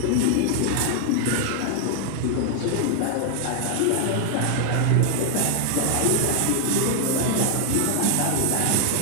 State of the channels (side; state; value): both; different; correlation 0.00